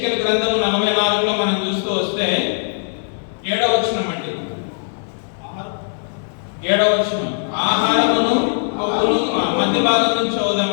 గ్రంథము 44లో మనం చూస్తూ వస్తే 7వ వచనం అండి. 7వ వచనం, ఆహారమును కొవ్వును మధ్య భాగం నుంచి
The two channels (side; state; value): right; silent; digital silence